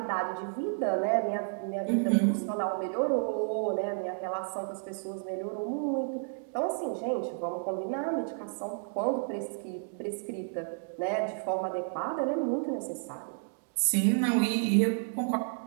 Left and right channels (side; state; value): left; silent; digital silence